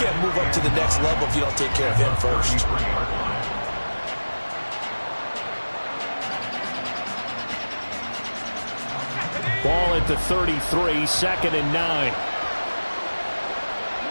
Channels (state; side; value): inverted; both; correlation -1.00